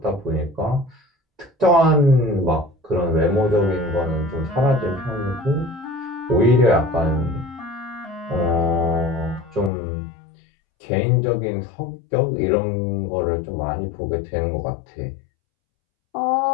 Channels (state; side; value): drops out; right; at 9.7 s